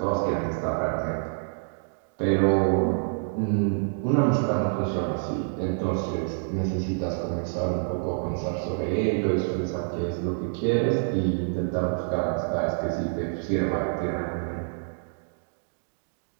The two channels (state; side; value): silent; left; digital silence